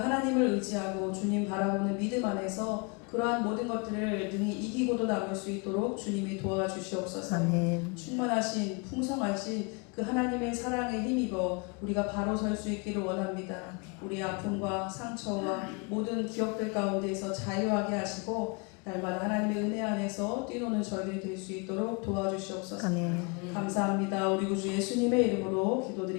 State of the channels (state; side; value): quieter; right; 31.5 dB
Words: 하나님을 의지하고 주님 바라보는 믿음 안에서 그러한 모든 것들을 능히 이기고도 남을 수 있도록 주님이 도와주시옵소서. 아멘. 충만하신 풍성하신 그 하나님의 사랑에 힘입어 우리가 바로 설 수 있기를 원합니다. 우리 아픔과 상처와 모든 기억들 가운데에서 자유하게 하시고 날마다 하나님의 은혜 안에서 뛰노는 저희들이 될 수 있도록 도와주시옵소서. 아멘. 감사합니다. 우리 구주 예수님의 이름으로